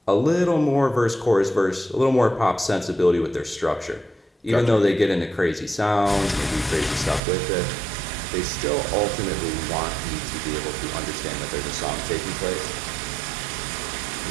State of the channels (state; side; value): drops out; left; at 7.2 s